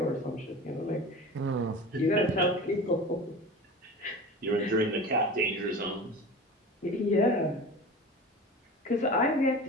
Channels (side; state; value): both; normal; correlation 0.34